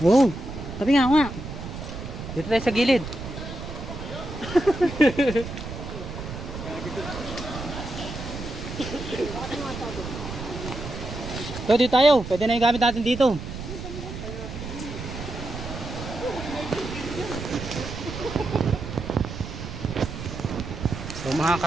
Oo, sabi nga nga. Dito tayo sa gilid. So, dito tayo. Pwede na yung gamit natin dito. So mga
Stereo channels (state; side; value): noise; right; rumble, 9 dB below the sound